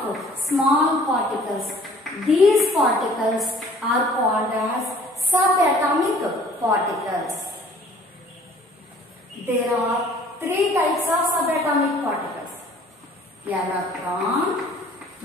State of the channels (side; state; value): both; normal; correlation 0.53